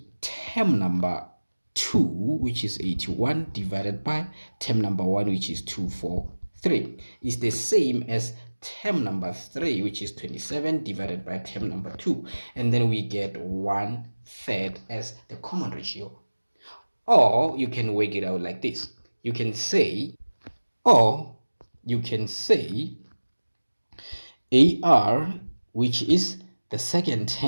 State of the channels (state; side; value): inverted; both; correlation -1.00